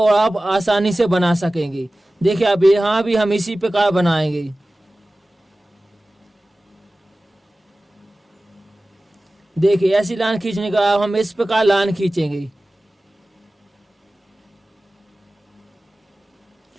आप आसानी से बना सकेंगे। देखिए अब यहाँ भी हम इसी प्रकार बनाएंगे। देखिए ऐसी लाइन खींचने के बाद हम इस प्रकार लाइन खींचेंगे।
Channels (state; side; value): normal; both; correlation 0.97